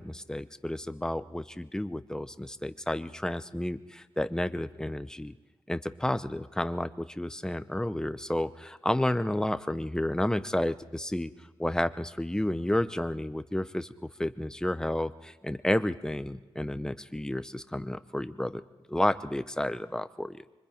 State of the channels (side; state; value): both; normal; correlation 0.97